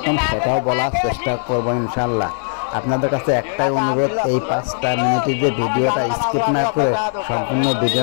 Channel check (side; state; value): right; silent; digital silence